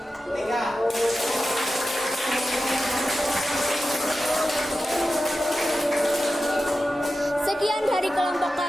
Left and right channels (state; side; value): normal; both; correlation 0.93